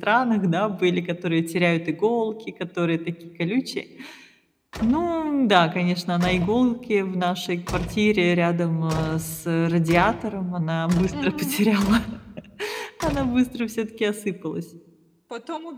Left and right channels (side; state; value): both; identical; correlation 1.00